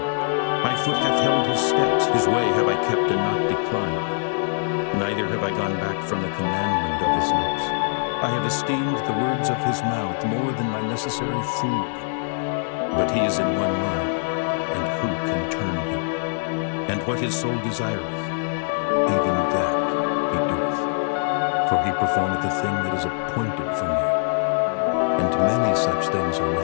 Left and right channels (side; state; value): right; silent; 63 dB below the other